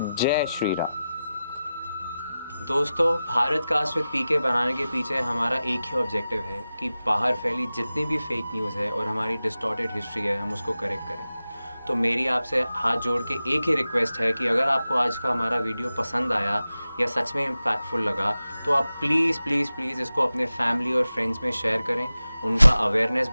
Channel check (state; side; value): inverted; both; correlation -0.94